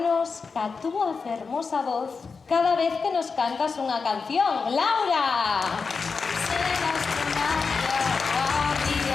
ca túa fermosa voz cada vez que nos cantas unha canción. ¡Laura!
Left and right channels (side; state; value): right; quieter; 4.9 dB